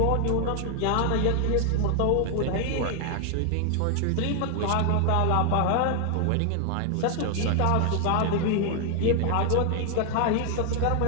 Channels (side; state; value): both; different; correlation 0.00